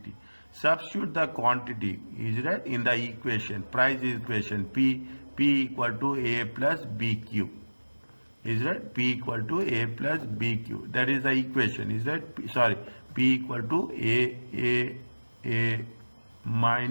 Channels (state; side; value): inverted; both; correlation -1.00